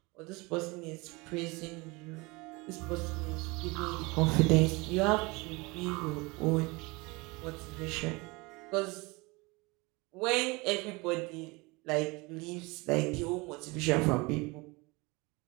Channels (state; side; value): quieter; left; 25.4 dB